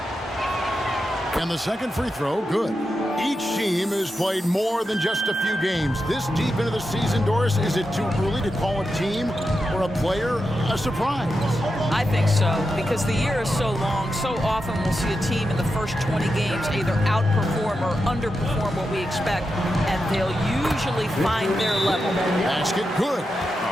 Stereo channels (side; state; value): both; normal; correlation 0.88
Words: And the second free throw, good. Each team has played more than just a few games. This deep into the season, Doris, is it too early to call a team or a player a surprise? I think so, because the year is so long. So often we'll see a team in the first 20 games either outperform or underperform what we expect, and they'll usually find their level. Basket, good.